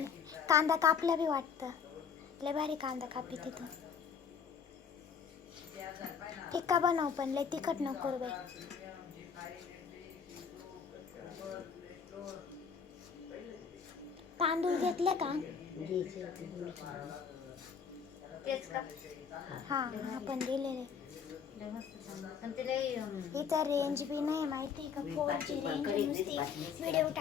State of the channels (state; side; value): quieter; right; 6.7 dB